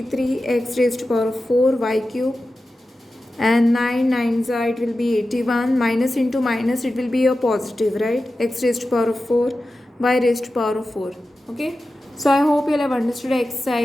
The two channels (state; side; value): normal; both; correlation 0.93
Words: x raised to power of 4 y cube, and 9 9s are, it will be 81, minus into minus it will be a positive, right? X raised to power of 4 y raised to power of 4. Okay, so I hope you all have understood